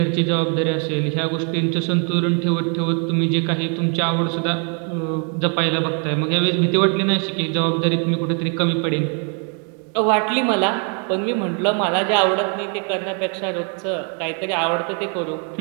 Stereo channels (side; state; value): left; quieter; 39.4 dB